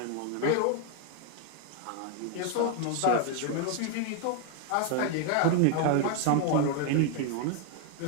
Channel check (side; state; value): both; different; correlation 0.00